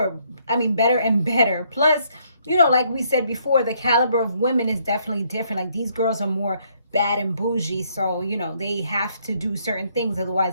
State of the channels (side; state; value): both; inverted; correlation -0.70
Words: better. Plus, like we said before, the caliber of women is definitely different. Like, these girls are more bad and bougie, so they have to do certain things,